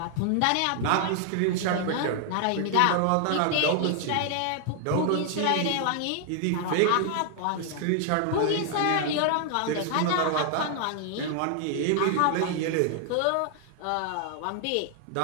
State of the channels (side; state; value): both; different; correlation 0.00